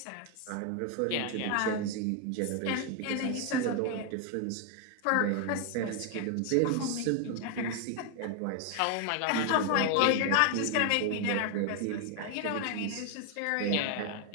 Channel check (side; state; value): both; different; correlation 0.01